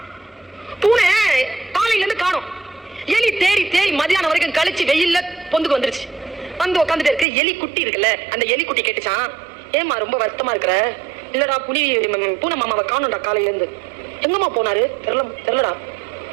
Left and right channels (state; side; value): drops out; left; at 7.2 s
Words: பூனை காலையில இருந்து காணோம். எலி தேடி தேடி மதியானம் வரைக்கும் கழிச்சு வெயில்ல பொந்துக்கு வந்துருச்சு. வந்து உட்காந்துட்டு இருக்கு. எலி குட்டி இருக்குல்ல, அந்த எலி குட்டி கேட்டுச்சான், ஏமா ரொம்ப வருத்தமா இருக்கிற? இல்லடா, பூனை மாமாவை காணோம்டா காலையில இருந்து. எங்கம்மா போனாரு? தெரியலடா.